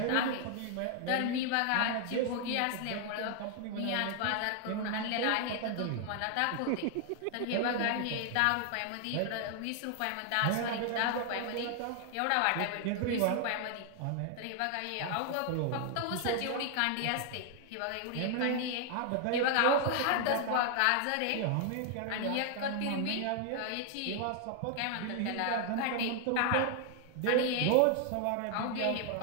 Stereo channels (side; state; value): both; different; correlation 0.00